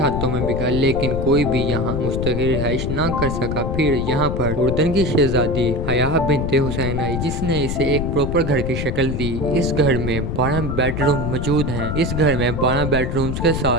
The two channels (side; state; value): left; noise; rumble, 2 dB below the sound